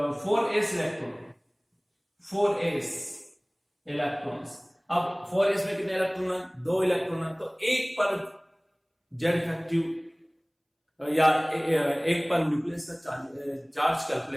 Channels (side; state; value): both; identical; correlation 1.00